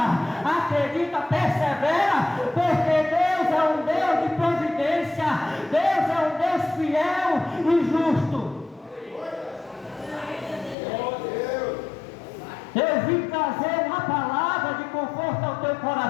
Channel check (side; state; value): right; drops out; at 10.8 s